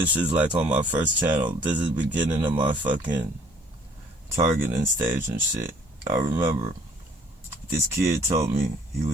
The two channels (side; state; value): both; normal; correlation 0.58